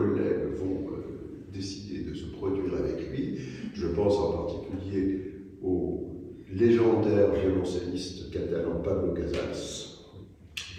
vont décider de se produire avec lui. Je pense en particulier au légendaire violoncelliste catalan Pablo Casals,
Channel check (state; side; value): identical; both; correlation 1.00